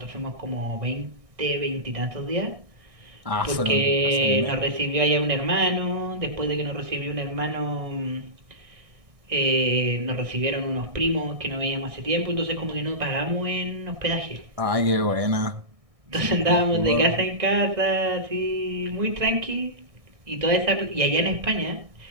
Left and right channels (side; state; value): left; late; 1.6 ms